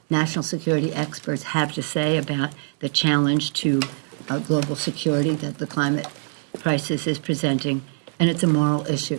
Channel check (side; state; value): left; silent; digital silence